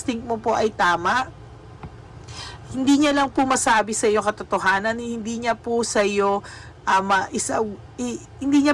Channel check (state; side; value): identical; both; correlation 1.00